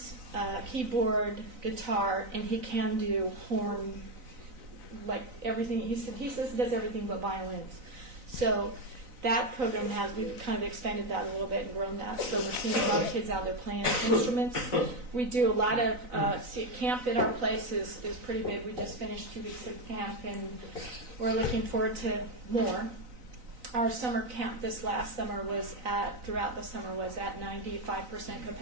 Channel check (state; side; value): late; left; 3.9 ms